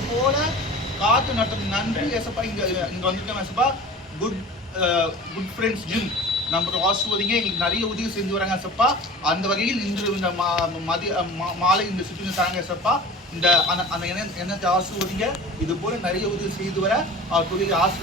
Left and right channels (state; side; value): normal; both; correlation 0.39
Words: போல காத்து நடத்தும் நன்றி ஏசப்பா. இங்க வந்துட்டோம் ஏசப்பா. குட் ஃப்ரெண்ட்ஸ் ஜிம் நம்ம ஆசிர்வதிங்க. எங்களுக்கு நிறைய உதவி செஞ்சு வராங்க ஏசப்பா. அந்த வகையில் இன்று இந்த மாலை இந்த சுற்றுலா தராங்க ஏசப்பா. இந்த அந்த எண்ணத்தை ஆசிர்வதிங்க. இது போல நிறைய உதவி செய்து வர அவர் தொழிலை